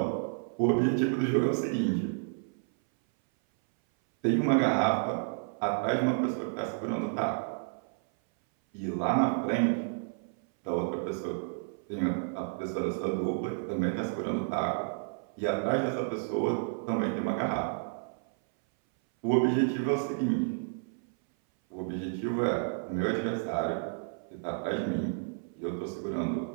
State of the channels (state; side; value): silent; left; 57 dB below the other